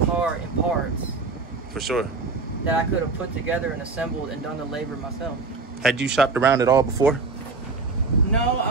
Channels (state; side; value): quieter; left; 4.1 dB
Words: in parts. For sure. That I could have put together and assembled and done the labor myself. Had you shopped around at all before? No,